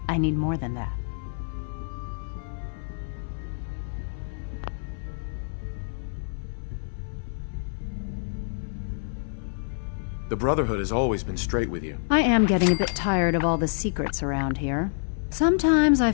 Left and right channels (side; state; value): right; silent; 56 dB below the other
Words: I need more than that. The Brotherhood has always been straight with you. I am getting a bit tired of all the secrets around here. Sometimes I